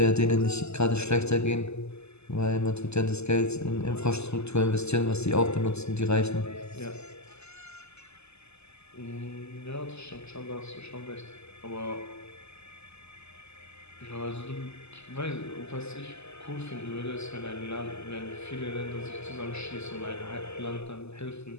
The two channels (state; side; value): late; right; 0.80 ms